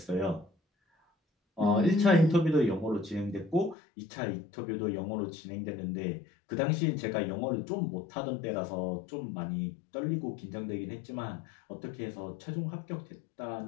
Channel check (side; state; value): right; drops out; at 3.8 s